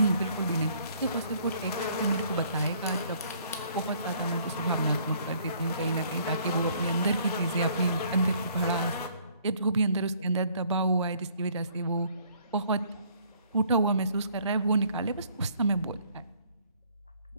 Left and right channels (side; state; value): both; inverted; correlation -0.61